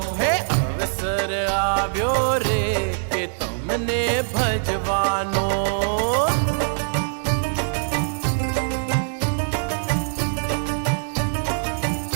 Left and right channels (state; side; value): silent; left; digital silence